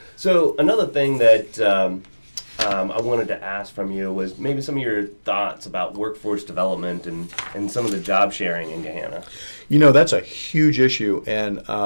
So another thing that I wanted to ask from you was maybe some of your thoughts about workforce development and some of the job sharing in Gahanna. That's a huge issue. And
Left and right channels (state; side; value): inverted; both; correlation -1.00